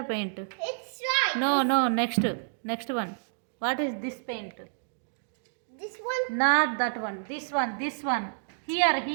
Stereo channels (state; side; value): silent; left; digital silence